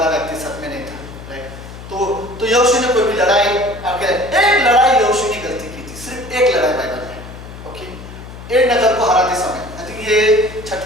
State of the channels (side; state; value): left; noise; hum, 14 dB below the sound